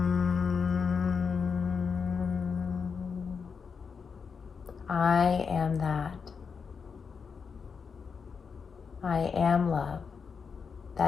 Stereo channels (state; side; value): quieter; right; 5.8 dB